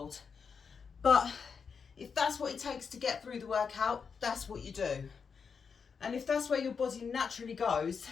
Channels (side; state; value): right; quieter; 5.9 dB